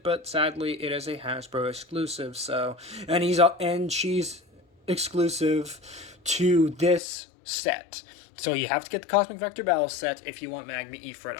but sadly, it is a Hasbro exclusive. So, and she's exclusive to this set. So you have to get the Cosmic Vector Battle set if you want Magma Ifrit.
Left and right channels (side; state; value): right; drops out; at 7.0 s